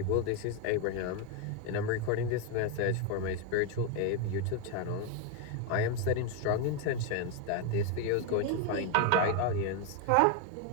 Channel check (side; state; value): both; different; correlation 0.01